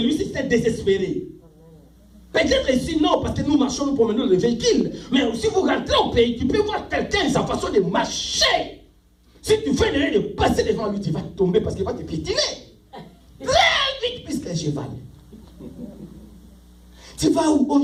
c'est désespéré. Peut-être ici non, parce que nous marchons, nous promenons le véhicule. Mais si vous rentrez au pays, tu peux voir quelqu'un, sa façon de marcher. Si tu fais l'erreur de passer devant lui, tu vas tomber parce qu'il va te piétiner. Très vite, puisqu'un cheval. Tu vas où? Oh,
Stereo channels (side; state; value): both; identical; correlation 1.00